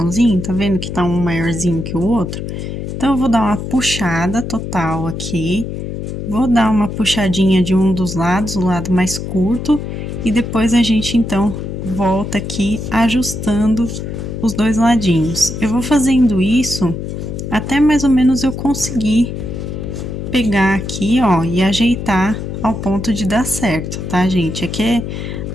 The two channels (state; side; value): noise; left; hum, 6 dB below the sound